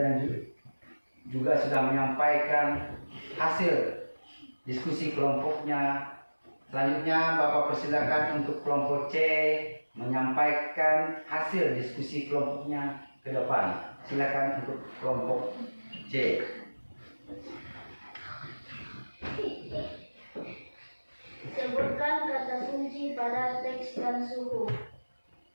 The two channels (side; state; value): both; inverted; correlation -1.00